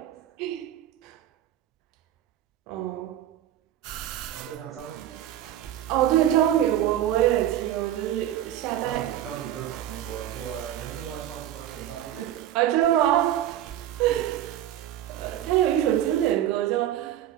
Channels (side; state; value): left; quieter; 11.9 dB